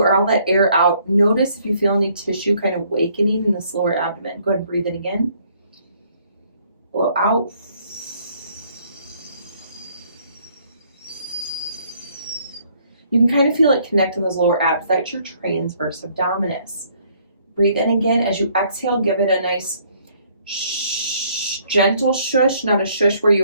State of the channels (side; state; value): both; inverted; correlation -0.64